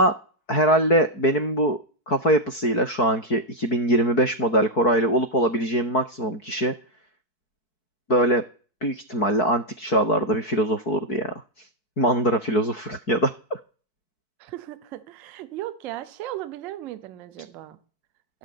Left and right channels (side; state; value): right; late; 4.6 ms